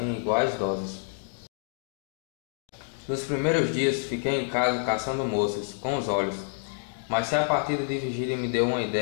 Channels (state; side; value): silent; right; digital silence